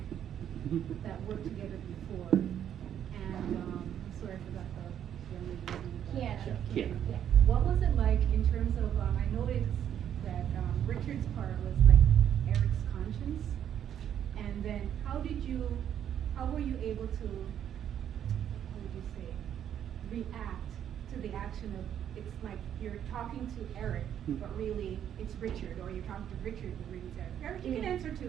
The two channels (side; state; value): left; quieter; 9.7 dB